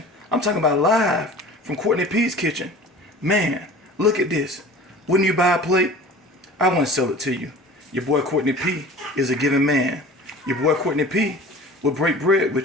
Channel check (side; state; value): both; normal; correlation 0.42